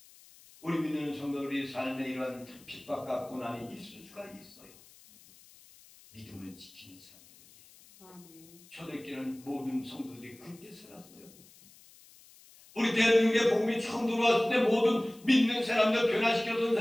우리 믿는 성도들이 삶에 이러한 핍박과 고난이 있을 수가 있어요. 믿음을 지키는 사람들에게. 초대교회는 모든 성도들이 그렇게 살았어요. 우리 대한민국의 복음이 처음 들어왔을 때 모든 믿는 사람들, 변화시켰던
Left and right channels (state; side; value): noise; left; hiss, 24 dB below the sound